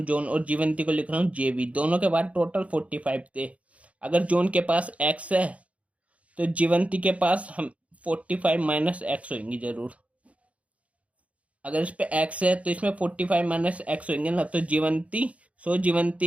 जॉन, और जीवंती को लिख रहा हूँ JV। दोनों के बाद टोटल 45 थे। अगर जॉन के पास एक्स है तो जीवंती के पास हम 45 माइनस एक्स होंगे जरूर। अगर इस पे एक्स है तो इसमें 45 माइनस एक्स होंगे ना, तो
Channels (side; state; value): left; late; 0.065 ms